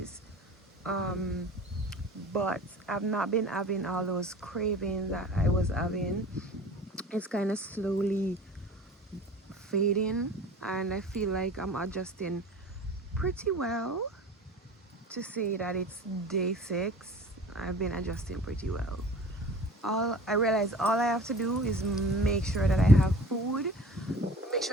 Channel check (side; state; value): both; normal; correlation 0.42